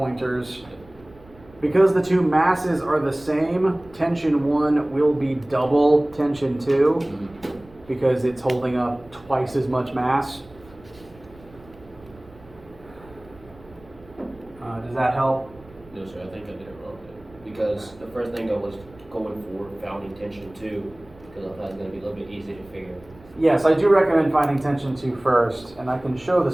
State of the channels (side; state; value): right; noise; rumble, 24 dB below the sound